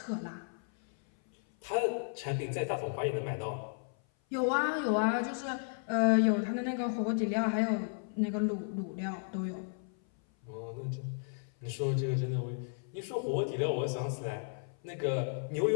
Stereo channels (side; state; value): right; silent; 55 dB below the other